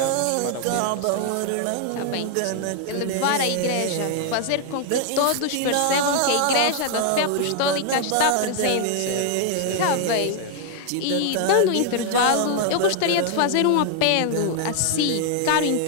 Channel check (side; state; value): both; different; correlation 0.00